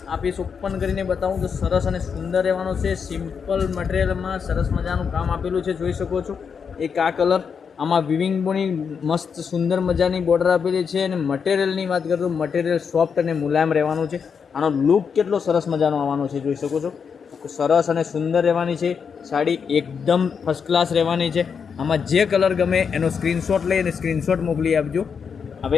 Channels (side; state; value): right; quieter; 6.4 dB